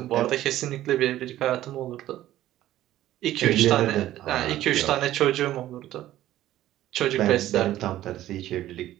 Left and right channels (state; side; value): quieter; left; 13.8 dB